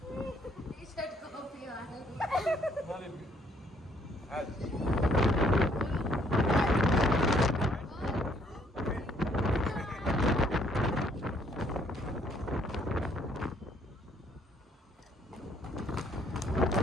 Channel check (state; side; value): normal; both; correlation 0.66